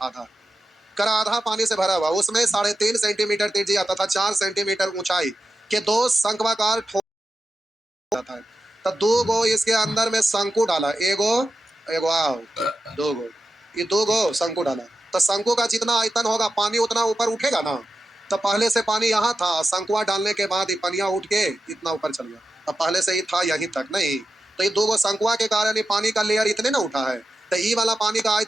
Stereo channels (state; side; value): normal; both; correlation 0.91